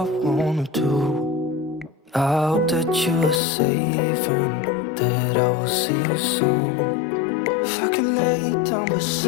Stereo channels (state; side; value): drops out; right; at 3.4 s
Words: wanna do. I hope that you're safe and that I will see you soon. If I could lay down